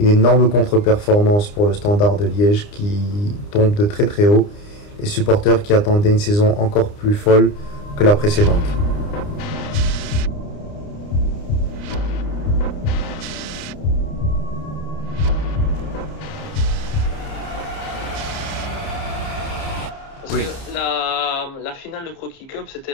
énorme contre-performance pour le Standard de Liège qui tombe de très très haut. Les supporters qui attendaient une saison encore plus folle que la précédente. Oui. La finale de Croquis Cup, c'était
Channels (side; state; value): right; late; 29 ms